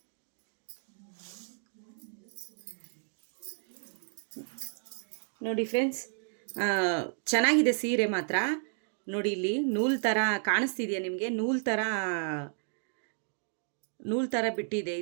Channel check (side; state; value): left; silent; 56 dB below the other